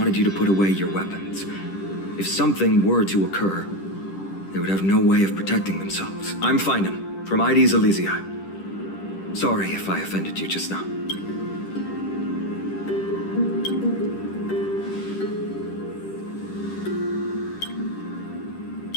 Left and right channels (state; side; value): late; right; 10 ms